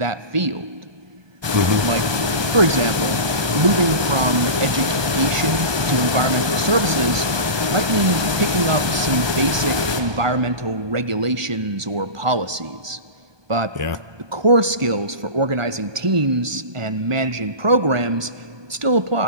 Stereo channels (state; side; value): late; left; 1.2 ms